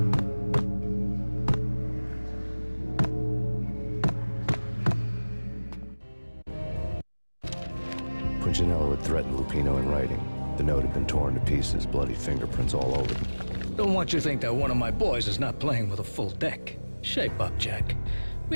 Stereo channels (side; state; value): both; inverted; correlation -1.00